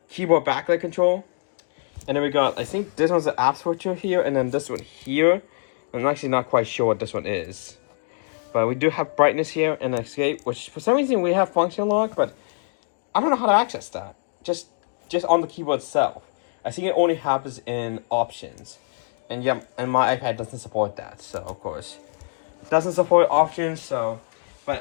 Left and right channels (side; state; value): right; silent; digital silence